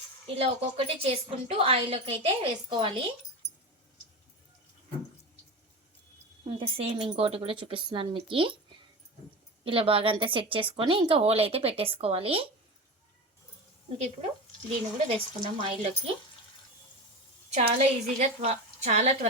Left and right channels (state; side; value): normal; both; correlation 0.25